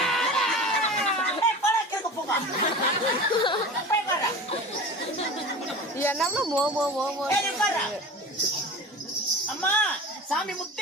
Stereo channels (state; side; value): normal; both; correlation 0.34